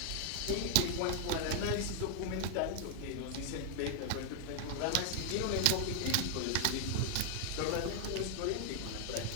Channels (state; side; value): different; both; correlation 0.00